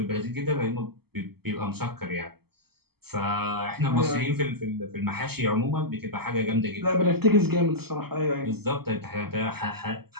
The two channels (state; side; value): late; left; 0.96 ms